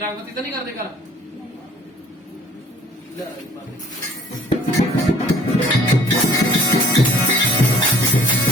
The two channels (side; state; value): both; normal; correlation 0.54